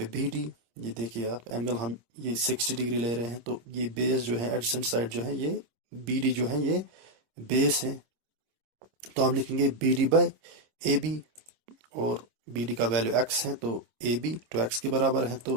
BD। ये देखिए आप एंगल हम ये 60 डिग्री ले रहे हैं, तो ये बेस जो है एडजेसेंट साइड जो है ये BD जो है ये बेस है। तो हम लिखेंगे BD बाई AB, और BD का वैल्यू x है, तो AB 2x के बराबर है।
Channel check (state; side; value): late; left; 26 ms